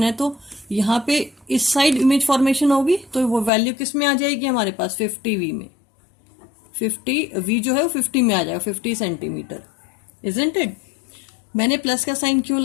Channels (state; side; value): drops out; right; at 3.5 s